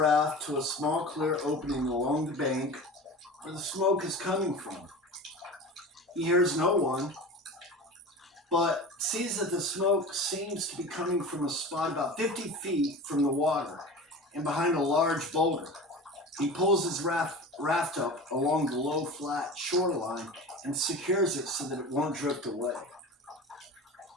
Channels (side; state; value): both; normal; correlation 0.34